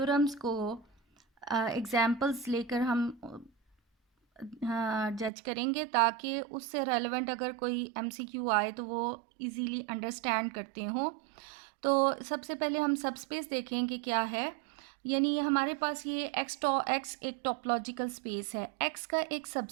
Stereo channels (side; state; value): left; drops out; at 5.3 s